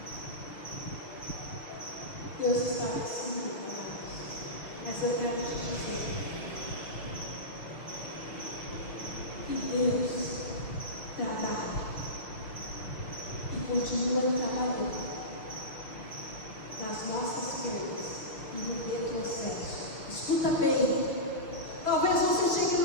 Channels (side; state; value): right; late; 6.2 ms